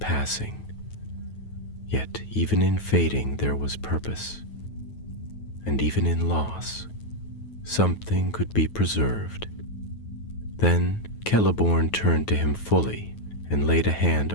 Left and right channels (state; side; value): late; right; 9.3 ms